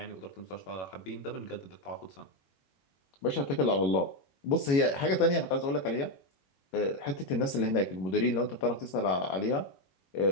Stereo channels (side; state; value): right; late; 22 ms